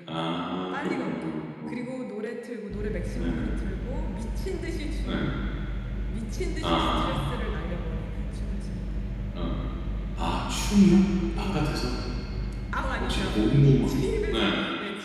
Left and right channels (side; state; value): both; identical; correlation 1.00